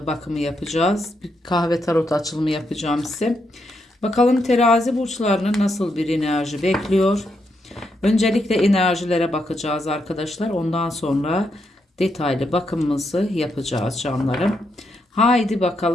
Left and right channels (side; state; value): both; normal; correlation 0.80